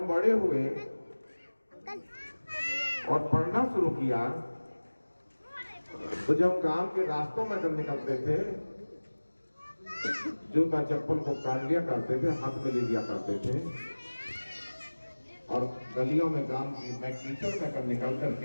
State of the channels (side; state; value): both; inverted; correlation -1.00